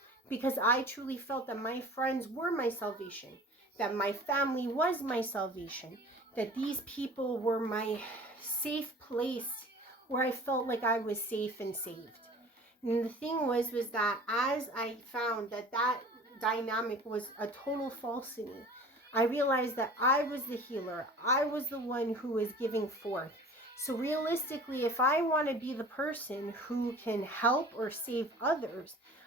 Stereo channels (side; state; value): both; normal; correlation 0.43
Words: because I truly felt that my friends were my salvation, that my family was my salvation, that these people were my safe place where I felt like I was safe and saved. And the thing was that as I found that dynamic was a total falsity, I realized that I was the healer. I was the one who was giving forth. So realistically, if I want to be the person who can help or save others,